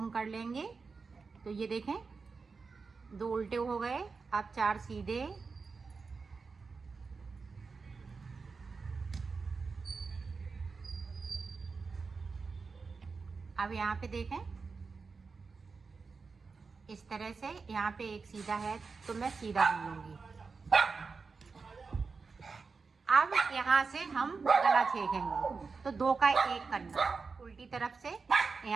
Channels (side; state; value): left; quieter; 4.7 dB